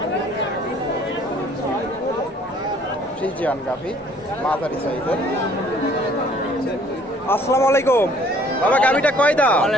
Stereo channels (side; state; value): both; normal; correlation 0.58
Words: ফ্রিজিয়ান গাভী মাঝারি সাইজের। আসসালামু আলাইকুম বাবা, গাভীটা কয় দাঁত?